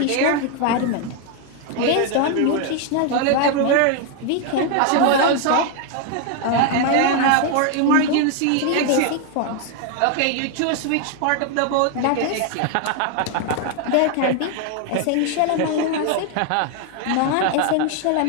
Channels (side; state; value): both; different; correlation 0.01